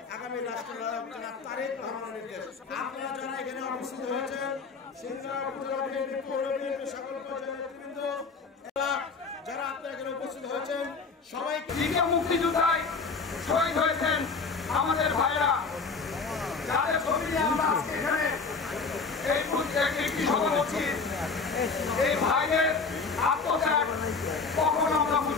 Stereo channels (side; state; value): right; quieter; 4.6 dB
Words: আগামী রাষ্ট্রনায়ক জনাব তারেক রহমানের নির্দেশ। আপনারা যারা এখানে উপস্থিত হয়েছেন সিংড়া উপজেলা বিএনপি পৌর বিএনপি সকল পর্যায়ের নেতৃবৃন্দ যারা আপনারা এখানে উপস্থিত হয়েছেন সবাইকে মুক্তিযোদ্ধায় শহীদ হয়েছেন আমাদের ভাইরা, যাদের ছবি নিয়ে আমরা আজকে এখানে একটি সভা করছি। এই ভাইদের আত্মত্যাগ কখনো আমরা